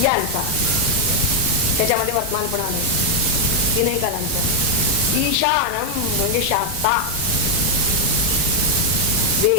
यांचा, त्याच्यामध्ये वर्तमान पण आलं, तीनही कालांचा. ईशानम म्हणजे शास्ता,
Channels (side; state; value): right; late; 11 ms